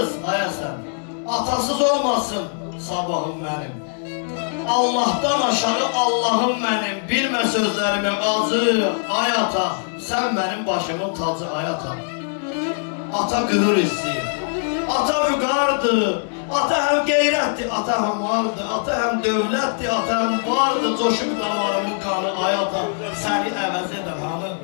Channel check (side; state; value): right; silent; digital silence